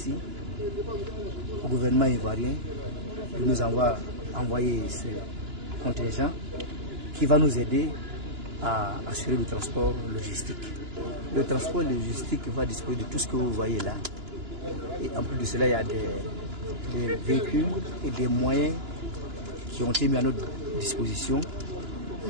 au gouvernement ivoirien de nous avoir envoyé ce contingent qui va nous aider à assurer le transport logistique. Le transport logistique va disposer de tout ce que vous voyez là. Et en plus de cela, il y a des véhicules et des moyens qui ont été mis à notre disposition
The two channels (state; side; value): late; left; 2.9 ms